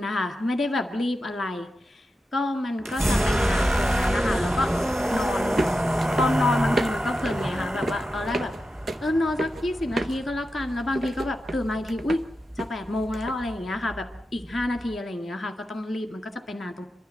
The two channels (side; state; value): both; normal; correlation 0.90